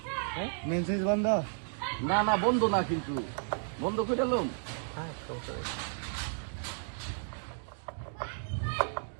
মেসেজ বন্ধ না না বন্ধ না, কিন্তু বন্ধ করে এলাম।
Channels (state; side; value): silent; left; digital silence